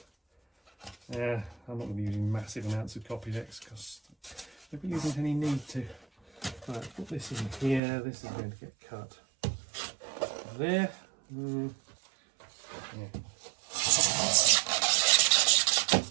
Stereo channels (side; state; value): left; drops out; at 7.8 s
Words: I'm not going to be using massive amounts of copy decks because there really isn't any need to. Right, put this in here. This is going to get cut there. Yeah.